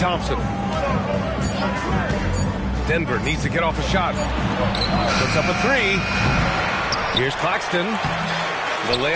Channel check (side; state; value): both; identical; correlation 1.00